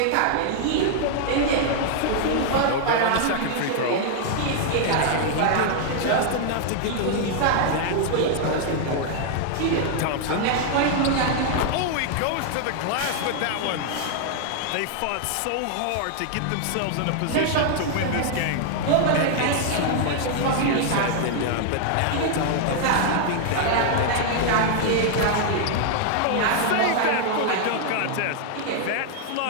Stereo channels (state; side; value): different; both; correlation 0.00